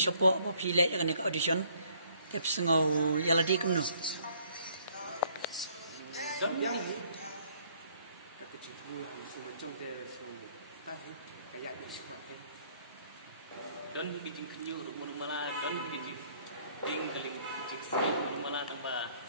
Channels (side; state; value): both; inverted; correlation -0.63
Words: apa pi le yang kena audition. Tep sengau yaladi kum no. Yang ni. Kecil pula mesti macam dia semua. Tahu kayak ni semua ni. Don bikin kenyu rumah malah don bikin tinggaling jiksi rumah malah tambah